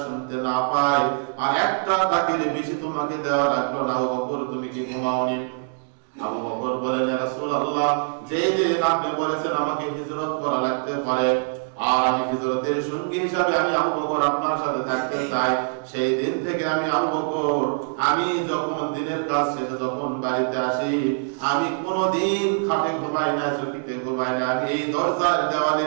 শুনতে না পায়, আর একটা ডাকের বেশি তোমাকে দেওয়া লাগলো না। আবু বকর তুমি কি ঘুমাওনি? আবু বকর বলেন, ইয়া রাসূলুল্লাহ যেই দিন আপনি বলেছেন আমাকে হিজরত করা লাগতে পারে, আর আমি হিজরতের সঙ্গী হিসাবে আমি আবু বকর আপনার সাথে থাকতে চাই, সেই দিন থেকে আমি আবু বকর, আমি যখন দিনের কাজ শেষে যখন বাড়িতে আসি, আমি কোনোদিন খাটে ঘুমাই না, চকিতে ঘুমাই না, আমি এই দরজার দেওয়ালে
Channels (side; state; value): left; silent; digital silence